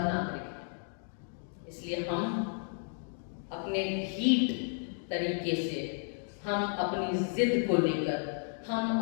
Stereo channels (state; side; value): silent; right; 56 dB below the other